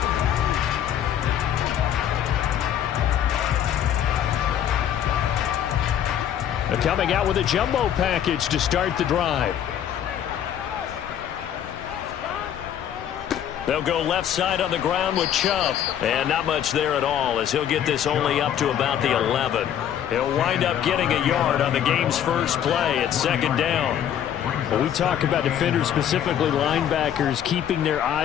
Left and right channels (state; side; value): quieter; right; 10.0 dB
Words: They're coming out with a jumbo package to start the drive. They'll go left side on the ground with Chubb. And not much there at all, as he'll get this only up to about the 11. He'll wind up getting a yard on the game's first play at second down. When we talk about defenders, specifically linebackers, keeping their